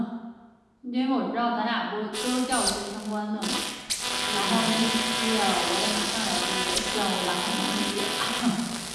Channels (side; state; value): both; identical; correlation 1.00